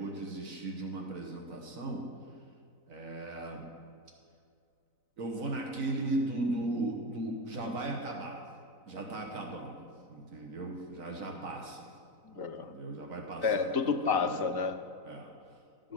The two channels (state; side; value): late; left; 4.0 ms